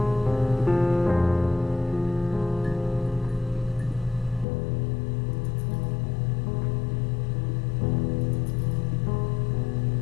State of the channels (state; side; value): drops out; right; at 4.5 s